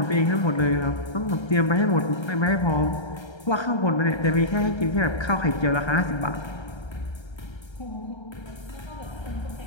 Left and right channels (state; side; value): late; right; 1.3 ms